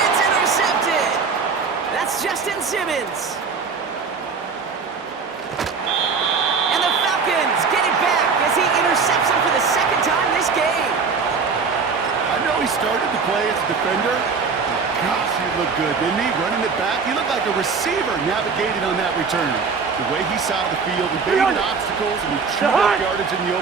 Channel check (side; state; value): left; quieter; 5.2 dB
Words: It's intercepted. That's Justin Simmons. And the Falcons get it back as he intercepts him for the 2nd time this game. I know he started to play as a defender. But gosh, he looked good, didn't he? Running it back, he looked like a receiver navigating on that return. The way he saw the field, he baited obstacles, and he chewed up yardage in the